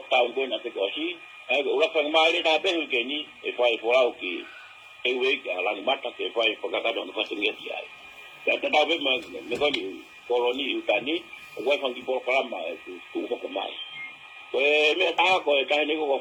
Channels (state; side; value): identical; both; correlation 1.00